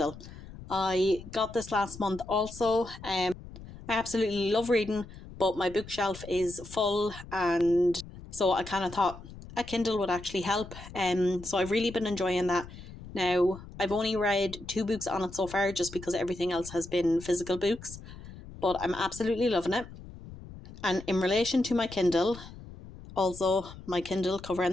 I got this last month also. I absolutely love reading, but my bookshelf is full, and so I kind of thought a Kindle would actually help. So I've really been enjoying that. Now, I've only read 2 books on it so far, just because everything else has been physical books, but I'm absolutely loving it. And in relation to my Kindle, also my Kindle cover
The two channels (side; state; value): left; noise; rumble, 15 dB below the sound